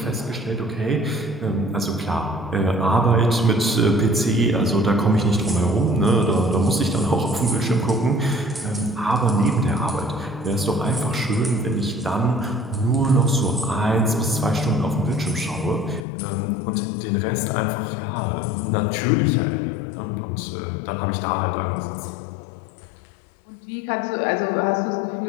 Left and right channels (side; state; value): right; drops out; at 16.1 s